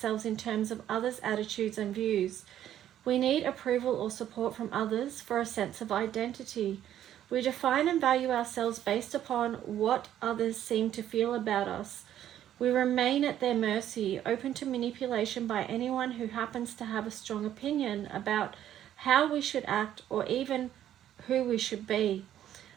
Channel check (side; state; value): left; quieter; 11.3 dB